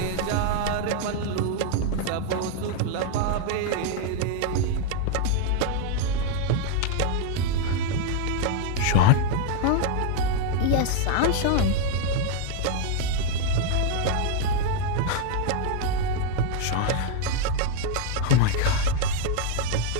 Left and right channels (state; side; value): different; both; correlation 0.00